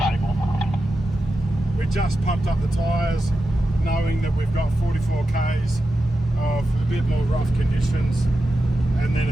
We just pumped up the tyres, knowing that we've got 44 k's of a bit more rough conditions, and then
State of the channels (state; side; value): normal; both; correlation 0.91